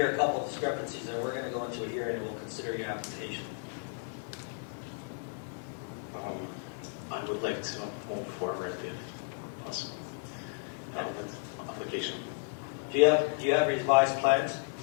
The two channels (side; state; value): right; silent; digital silence